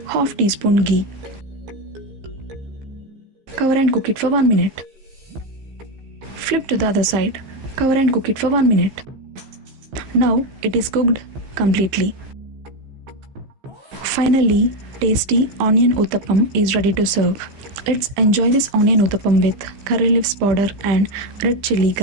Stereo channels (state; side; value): late; left; 15 ms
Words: half teaspoon ghee. Cover and cook it for 1 minute. Flip to the other side. Cover and cook it for 1 minute. Now it is cooked completely. Finally, tasty onion uttappam is ready to serve. Let's enjoy this onion uttappam with curry leaves powder and red chili